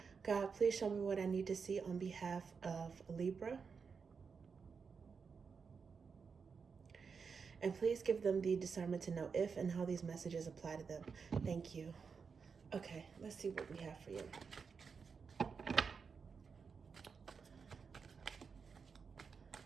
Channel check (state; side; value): quieter; left; 5.6 dB